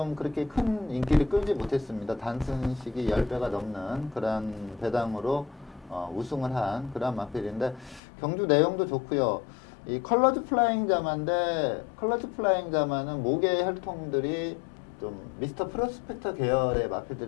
그렇게 큰 인기를 끌지 못했습니다. 단순식이 10배가 넘는 그런 배당으로 우승을 한 그런 마필인데 경주 내용도 좋고요. 이 컬러즈 플라잉 자마인데 컬러즈 플라잉 자마는 목의 혈통들이 좀 미스터 프로스펙터 계열의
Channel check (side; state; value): right; drops out; at 8.0 s